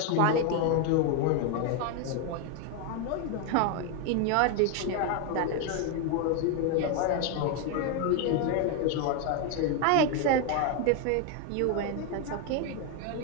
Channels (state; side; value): different; both; correlation 0.01